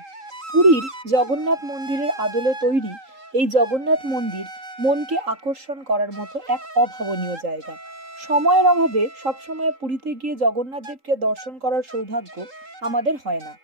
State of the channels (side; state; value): left; late; 3.8 ms